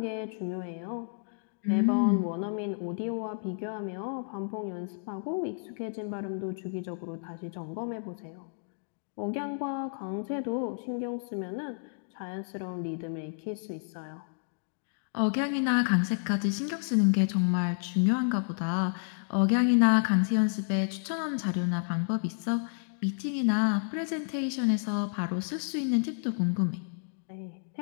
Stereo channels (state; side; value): silent; right; digital silence